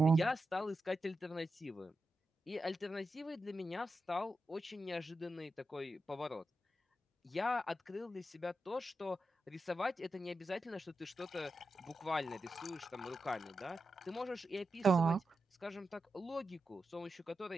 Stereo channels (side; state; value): both; normal; correlation 0.89